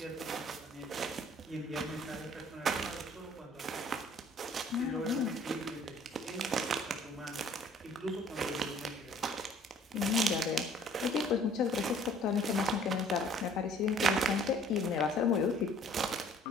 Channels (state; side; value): normal; both; correlation 0.55